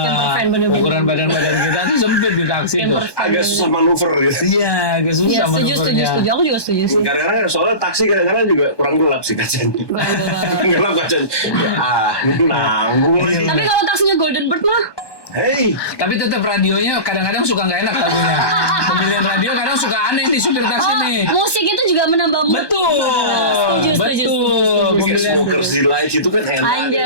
Camper van, bener-bener. ukuran badan-badan kita tuh sempit di taksi tuh. Camper van. agak susah manuver gitu. Iya, agak susah Iya, setuju. manuvernya. Aku juga setuju sih. Kadang-kadang soalnya taksi kadang-kadang juga kurang gelap sih kacanya. Kurang gelap. Gelap kacanya. Ini nanggung lagi. Tapi kalau taksinya Golden Bird mah, Hey, Tapi tetap radionya kadang-kadang suka nggak enak lagunya. Pemilihan radio kadang suka aneh nih supir taksi nih. musik itu juga menambah mood. Betul. Setuju, setuju, Betul. setuju. kayak Smokers Delight itu kan enak.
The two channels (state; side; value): late; right; 1.2 ms